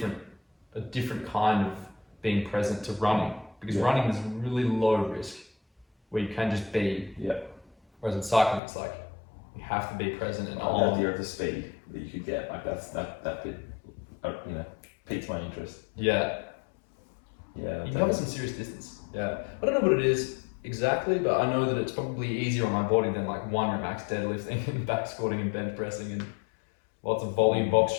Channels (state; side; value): drops out; right; at 8.6 s